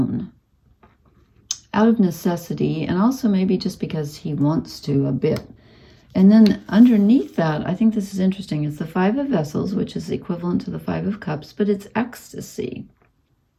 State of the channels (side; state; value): both; identical; correlation 1.00